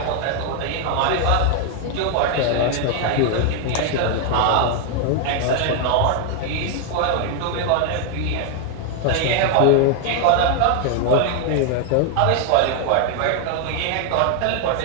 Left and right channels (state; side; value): different; both; correlation 0.00